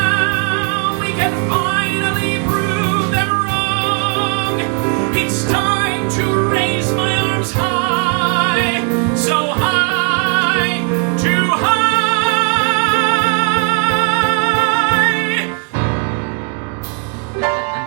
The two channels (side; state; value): left; quieter; 39.2 dB